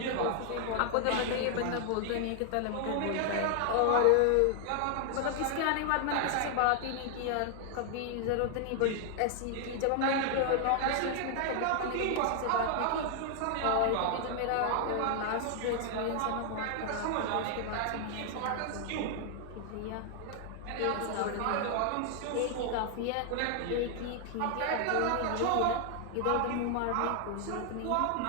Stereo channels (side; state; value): both; different; correlation 0.00